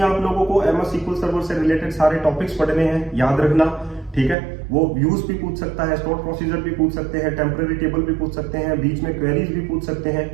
आप लोगों को MS SQL सर्वर से रिलेटेड सारे टॉपिक्स पढ़ने हैं, याद रखना, ठीक है। वो व्यूज भी पूछ सकता है, स्टोर प्रोसीजर भी पूछ सकते हैं, टेम्पररी टेबल भी पूछ सकते हैं, बीच में क्वेरीज भी पूछ सकते हैं,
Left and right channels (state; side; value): drops out; left; at 4.4 s